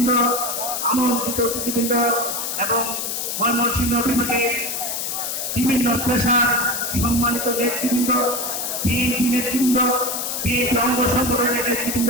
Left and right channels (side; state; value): left; noise; hiss, 3 dB below the sound